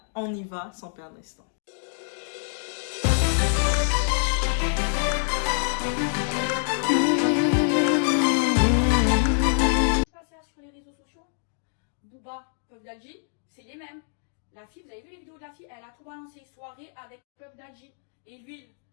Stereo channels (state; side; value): silent; right; digital silence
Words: on y va sans perdre l'instant. Sur les réseaux sociaux, Booba, Puff Daddy, c'est les mêmes. La fille, vous avez vu les vidéos de la fille, elle a tout balancé, soirée avec Puff Daddy et l'huile,